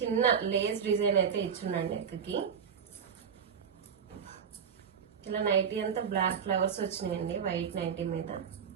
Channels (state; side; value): quieter; left; 7.2 dB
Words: లేస్ డిజైన్ అయితే ఇచ్చున్నాడు నెక్ కి. ఇలా నైటీ అంతా బ్లాక్ ఫ్లవర్స్ వచ్చినాయండి. వైట్ నైటీ మీద